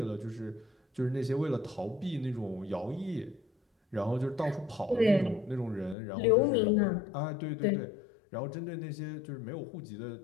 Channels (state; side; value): drops out; right; at 6.0 s